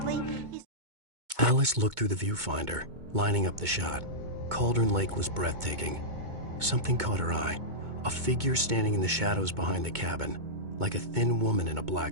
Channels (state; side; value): late; left; 2.2 ms